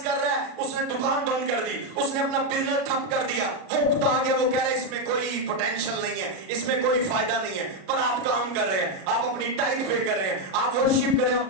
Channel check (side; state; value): left; late; 37 ms